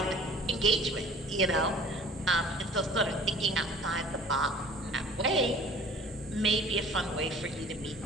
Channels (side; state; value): both; normal; correlation 0.48